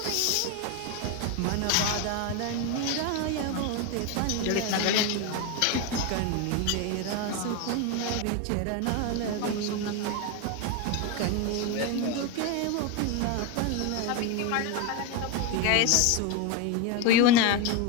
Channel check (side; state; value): both; different; correlation 0.02